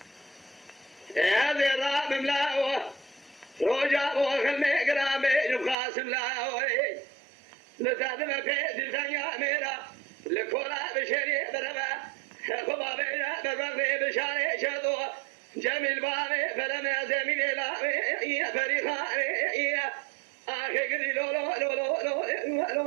هذه الراب ملاوة رجع وخلني قرامي قاسم لاوي لتعلم في الدنيا ميرا لكولا بشري بربا خبا بينا بربي بشاري شدو جميل بابي فلم يزمين لاوي يا فريخاني يا آخي قدي لو لو لو لو لو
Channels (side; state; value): left; drops out; at 5.8 s